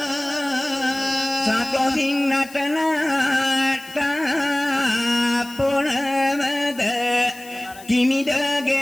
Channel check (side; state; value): left; noise; hiss, 20 dB below the sound